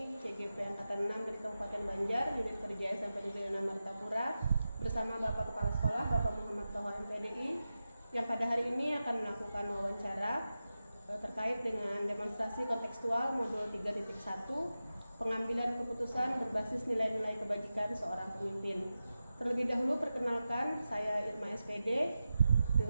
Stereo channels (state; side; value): inverted; both; correlation -0.92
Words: CGP Angkatan 6 dari Kabupaten Banjar, Unit Kerja SMP Negeri 6 Martapura, bersama Bapak Kepala Sekolah, Bapak Muhammad Toha MPDI, yang pada hari ini akan melakukan wawancara terkait dengan demonstrasi kontekstual modul 3.1, pengambilan keputusan berbasis nilai-nilai kebajikan seorang pemimpin. Terlebih dahulu perkenalkan, saya Irma SPD,